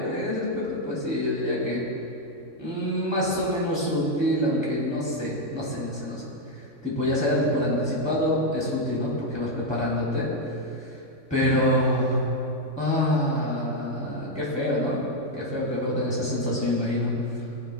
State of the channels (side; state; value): left; late; 3.6 ms